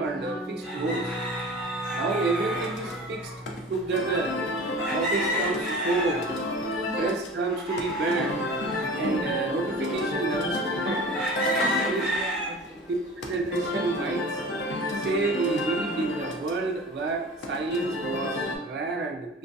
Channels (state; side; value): normal; both; correlation 0.39